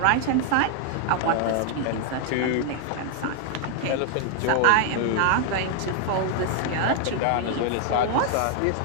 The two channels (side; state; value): both; different; correlation 0.00